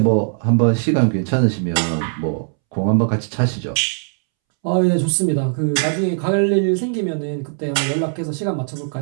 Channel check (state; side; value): silent; left; 66 dB below the other